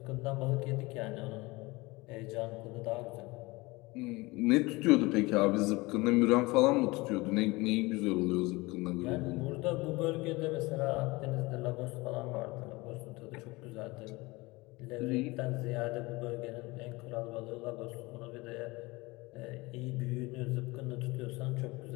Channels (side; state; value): right; quieter; 22.9 dB